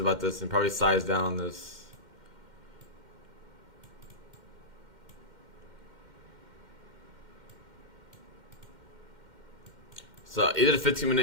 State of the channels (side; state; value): left; late; 2.1 ms